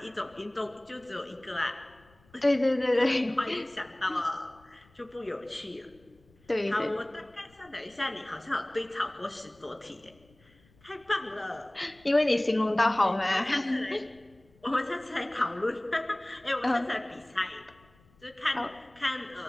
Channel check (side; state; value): left; noise; rumble, 30 dB below the sound